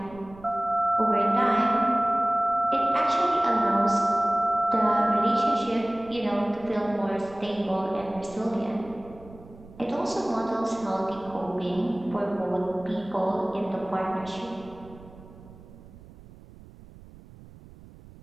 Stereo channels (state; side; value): noise; right; rumble, 20 dB below the sound